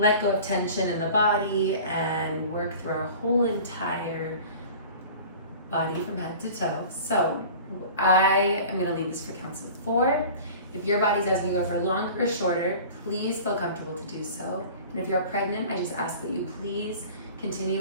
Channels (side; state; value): both; inverted; correlation -0.41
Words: go of tension in the body and work through our whole entire body from head to toe. So I am going to leave this for counts of 4. If your body's asking you to go for longer or shorter, please feel comfortable to do so. And if you're pregnant, I just ask that you please continue